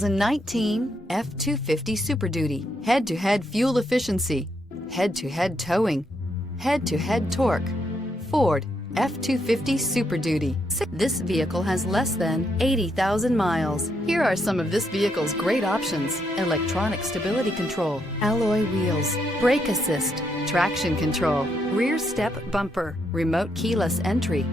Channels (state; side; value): normal; both; correlation 0.77